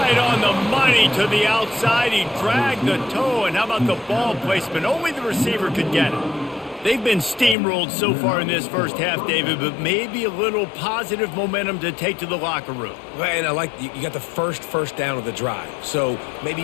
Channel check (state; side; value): drops out; right; at 7.6 s